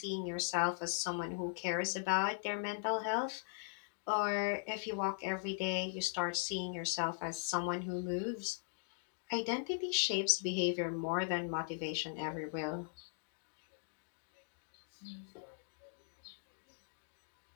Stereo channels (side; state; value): right; silent; digital silence